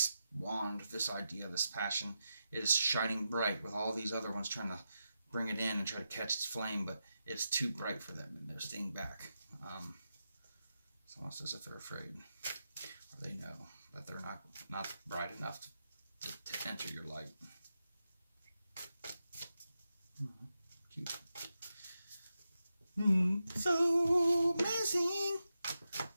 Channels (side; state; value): both; inverted; correlation -0.88